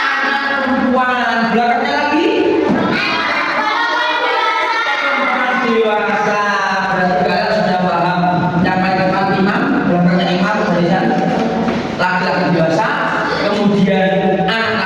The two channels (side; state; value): both; identical; correlation 1.00